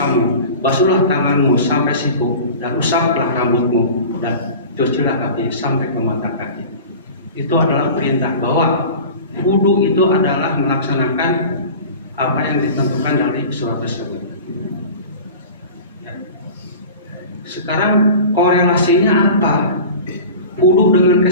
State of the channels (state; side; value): inverted; both; correlation -0.37